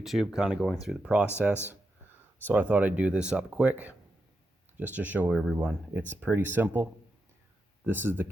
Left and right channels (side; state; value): both; normal; correlation 0.86